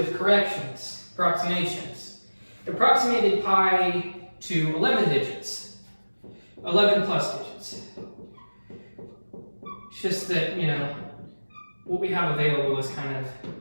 corrections, approximations. Approximated pi to 11 digits, 11 plus digits. It's just that, you know, what we have available is kind of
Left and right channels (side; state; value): both; inverted; correlation -1.00